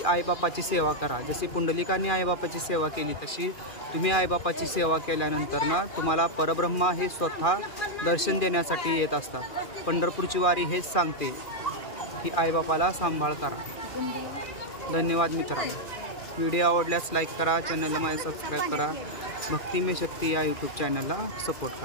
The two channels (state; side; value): late; right; 2.4 ms